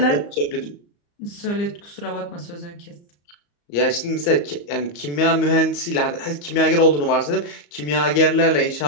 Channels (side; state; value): right; late; 34 ms